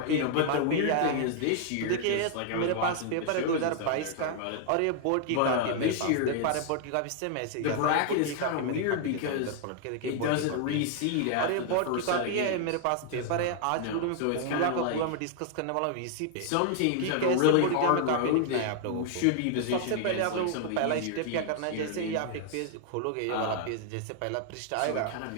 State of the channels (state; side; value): different; both; correlation 0.00